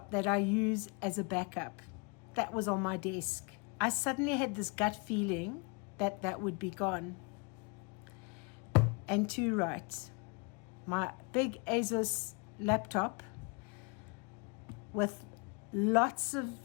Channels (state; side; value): quieter; right; 32.5 dB